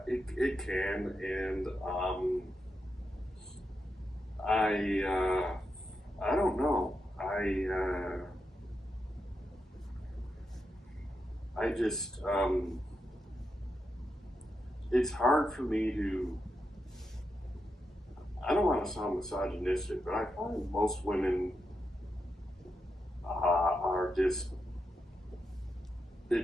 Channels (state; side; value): normal; both; correlation 0.86